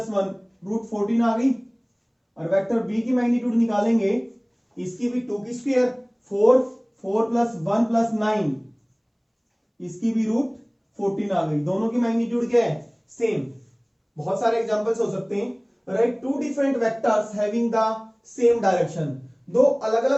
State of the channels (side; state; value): both; identical; correlation 1.00